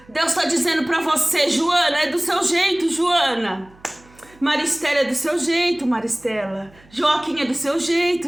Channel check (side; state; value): right; noise; hum, 27 dB below the sound